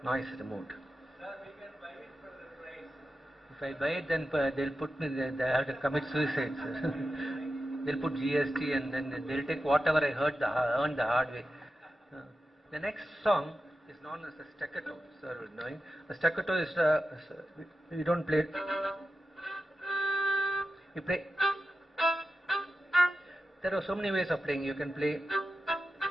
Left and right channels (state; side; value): normal; both; correlation 0.91